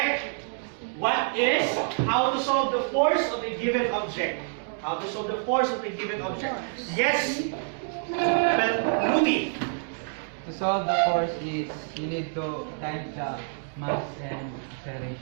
What is how to solve the force of a given object? How to solve the force of a given object? Yes. Well, Ruby. To solve the force is you need to times the mass and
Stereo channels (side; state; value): left; silent; 60 dB below the other